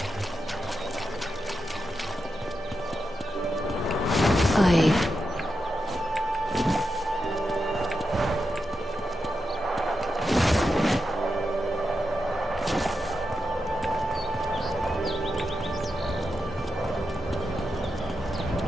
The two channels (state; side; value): normal; both; correlation 0.87